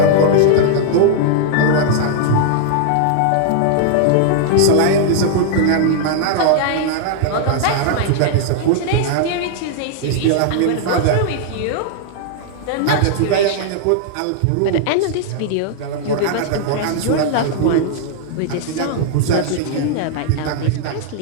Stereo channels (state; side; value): different; both; correlation -0.01